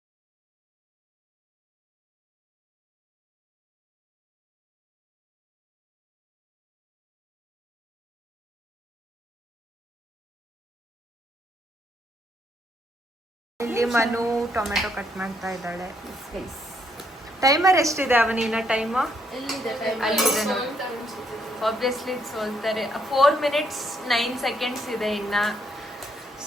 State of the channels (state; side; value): normal; both; correlation 0.73